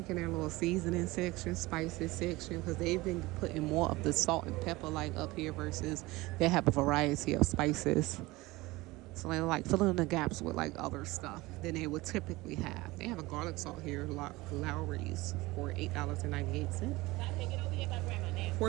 their little seasoning section, spices section, because they've been putting more of the salt and pepper like up here versus they have a variety of spices. So they're like filling in the gaps with like other stuff than they would typically have. They have a garlic salt here, Lowry's, for $8.98.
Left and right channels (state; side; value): quieter; left; 20.7 dB